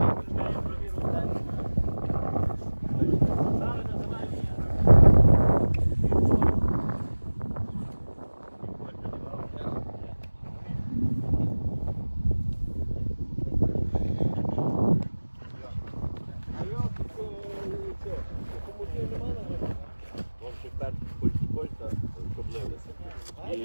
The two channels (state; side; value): inverted; both; correlation -1.00